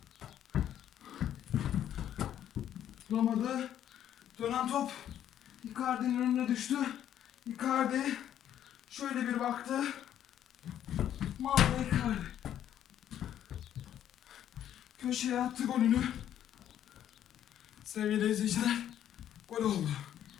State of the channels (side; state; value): right; quieter; 10.7 dB